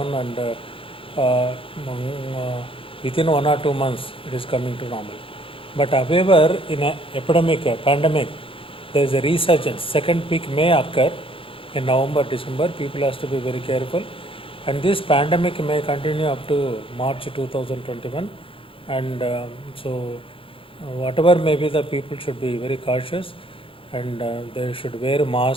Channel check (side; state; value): right; late; 0.26 ms